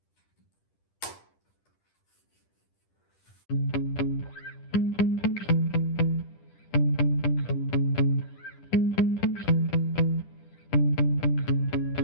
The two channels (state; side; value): late; right; 10 ms